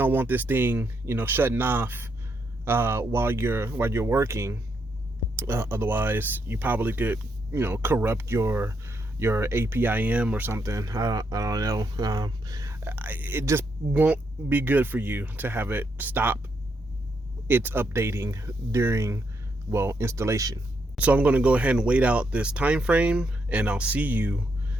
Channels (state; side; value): normal; both; correlation 0.78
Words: want this thing, shutting off while you're working. Otherwise, you probably could, corrupt your APIM or something. I don't know. It just won't be good for you to have it stop its updating during, installation. So I'm going to go ahead and wait out this time frame, and I'll see you